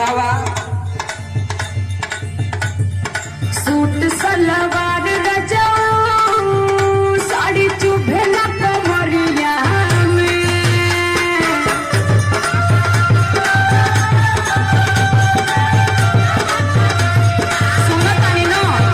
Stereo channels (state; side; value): identical; both; correlation 1.00